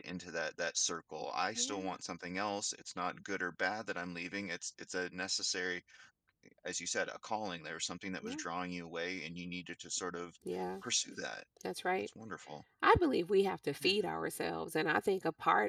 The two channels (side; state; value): both; identical; correlation 1.00